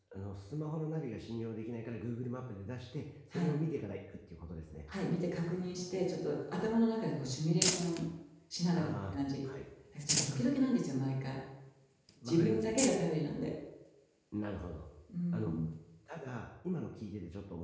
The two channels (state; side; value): identical; both; correlation 1.00